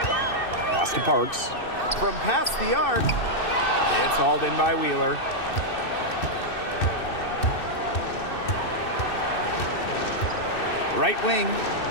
Pass to Parks. From past the arc, it's hauled in by Wheeler. Right wing.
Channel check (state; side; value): late; right; 2.6 ms